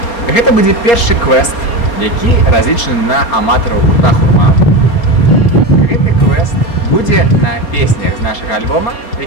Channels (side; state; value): right; late; 4.3 ms